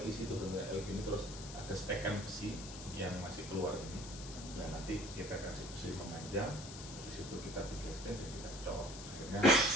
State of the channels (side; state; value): left; noise; hiss, 12 dB below the sound